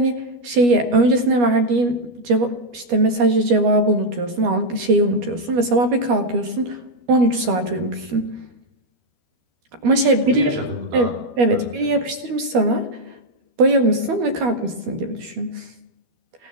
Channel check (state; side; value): late; left; 12 ms